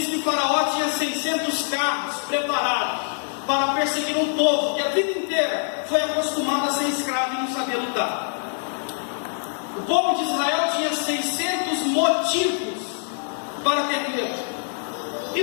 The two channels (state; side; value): silent; right; digital silence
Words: que Faraó tinha 600 carros preparados para perseguir um povo que a vida inteira foi acostumado a ser escravo e não sabia lutar. O povo de Israel tinha 600 motivos para ter medo. E